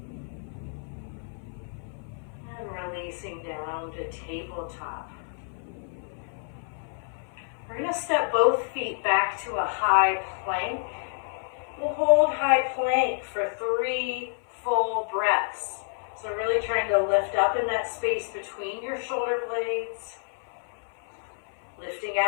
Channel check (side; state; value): right; silent; 56 dB below the other